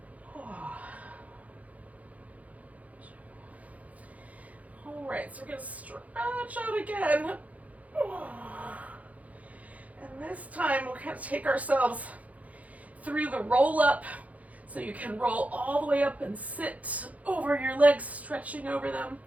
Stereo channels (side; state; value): left; late; 0.071 ms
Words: All right, so we're going to stretch out again. And this time we'll kind of take ourselves through the roll up So you can roll all the way up and sit over your legs, stretching over them,